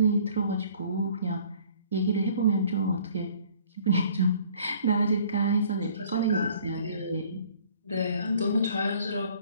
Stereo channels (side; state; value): both; inverted; correlation -0.55